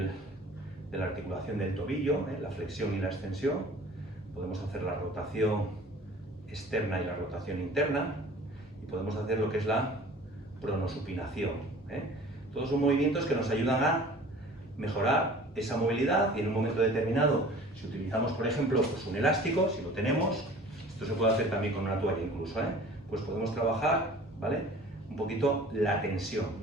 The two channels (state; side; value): normal; both; correlation 0.46